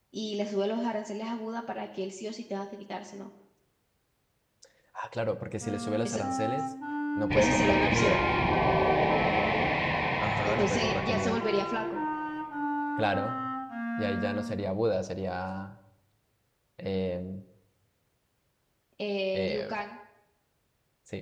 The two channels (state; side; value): identical; both; correlation 1.00